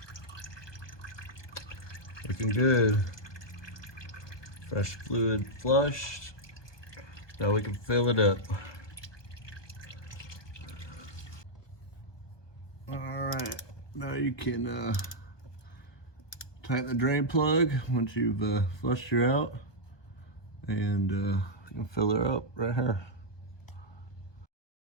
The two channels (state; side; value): late; right; 1.2 ms